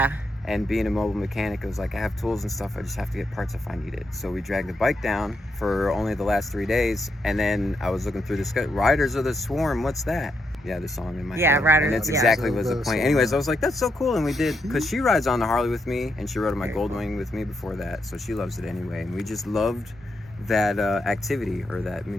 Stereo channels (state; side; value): normal; both; correlation 0.81